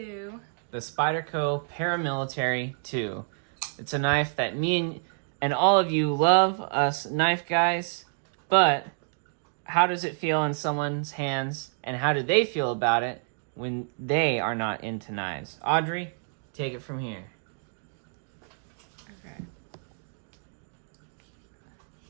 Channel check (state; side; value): silent; left; digital silence